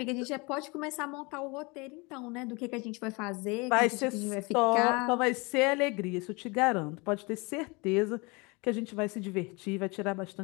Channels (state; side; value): quieter; right; 27.5 dB